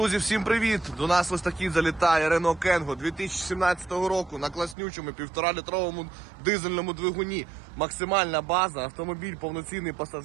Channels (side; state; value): left; drops out; at 4.8 s